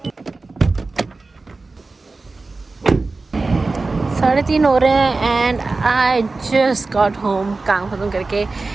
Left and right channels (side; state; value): left; quieter; 3.6 dB